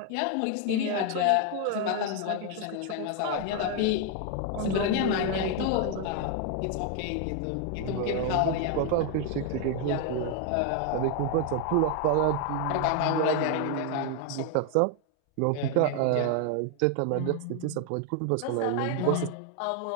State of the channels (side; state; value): both; different; correlation 0.01